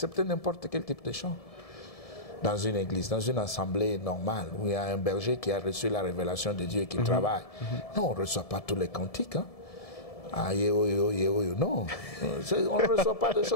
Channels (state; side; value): late; right; 1.7 ms